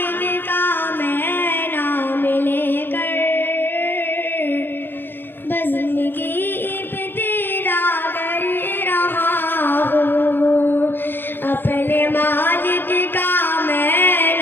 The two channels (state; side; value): late; right; 0.099 ms